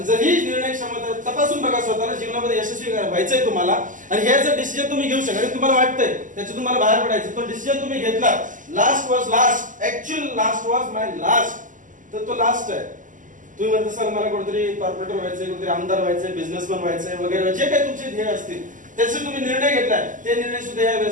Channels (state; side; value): late; left; 0.38 ms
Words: जर ही निर्णय क्षमता तपासून बघा स्वतःला, जीवनामध्ये यशस्वी व्हायचंय तुम्हाला, आणि हे जर डिसिजन तुम्ही घेऊ शकता, तुम्हाला वाटतंय त्याच्यातून तुम्हाला बाहेर पडायचं, तो डिसिजन तुम्ही घेतला, last was last, actual last was my last, तर तो लास्ट आहे. तुम्ही म्हणता सर मला कुठेतरी कॉर्पोरेटर व्हायचंय, कुठेतरी आमदार व्हायचंय, बिझनेसमॅन व्हायचंय वगैरे, जे काही तुमचे ध्येय असतील त्याचे तुम्ही निर्णय घेतलाय, ते निर्णय सुद्धा या